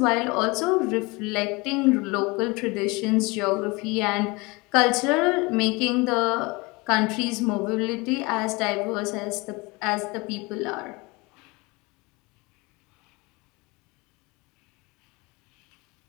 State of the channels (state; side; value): quieter; right; 25.4 dB